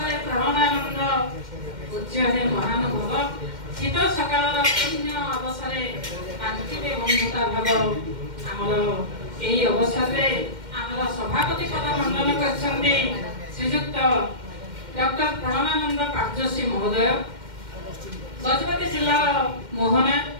ପ୍ରେରଣାନନ୍ଦ। ପୂଜ୍ୟ ହେ ମହାନୁଭବ, ଶୀତ ସକାଳର ପୁଣ୍ୟ ଅବସରେ କାନ୍ତିବେ ବନ୍ଧୁତା ଭାବ। ଆମର ଏହି ଅବସରରେ ଆମର ସଭାପତି ପଦ ମଣ୍ଡନ କରିଛନ୍ତି ଶ୍ରୀଯୁକ୍ତ ଡକ୍ଟର ପ୍ରେରଣାନନ୍ଦ କାର୍ଯ୍ୟଶ୍ରୀ ମହୋଦୟ, ଗଜପତି ଜିଲ୍ଲାର ମୋହନା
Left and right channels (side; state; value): left; late; 2.1 ms